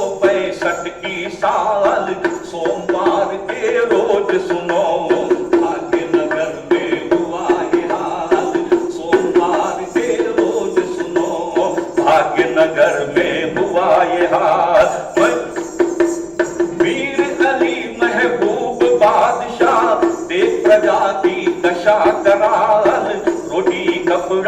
की साल, सोमवार के रोज सुनो भाग्यनगर में हुआ ये हाल, सोमवार के रोज सुनो भाग्यनगर में हुआ ये हाल। वीर अली महबूब बादशाह देख प्रजा की दशा कराल, रोटी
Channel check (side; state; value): both; identical; correlation 1.00